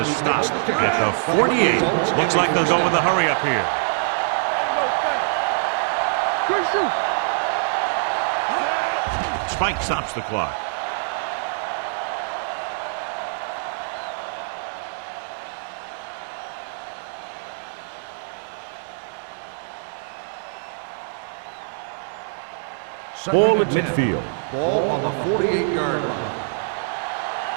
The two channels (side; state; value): left; silent; digital silence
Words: stop at the 48. Looks like they'll go with a hurry up here. Good shoot. Spike stops the clock. Ball at midfield. Ball on the 48-yard line.